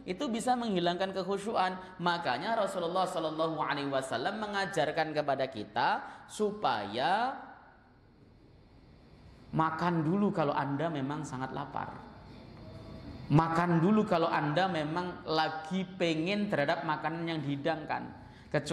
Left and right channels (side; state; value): both; identical; correlation 1.00